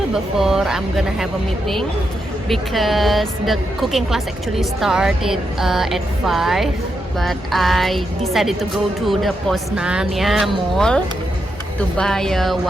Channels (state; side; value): normal; both; correlation 0.83